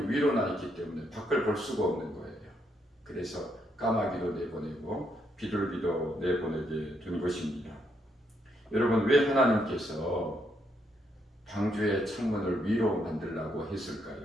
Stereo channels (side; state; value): both; normal; correlation 0.76